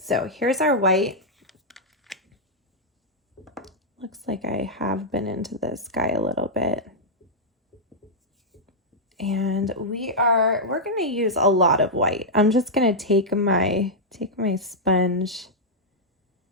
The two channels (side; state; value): both; normal; correlation -0.06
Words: here's our white. Looks like I have been into this guy a little bit. And we're going to use a lot of white. I'm just going to take my sponge,